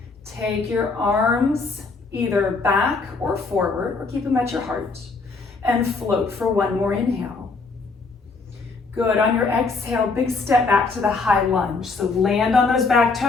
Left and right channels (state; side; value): quieter; right; 4.1 dB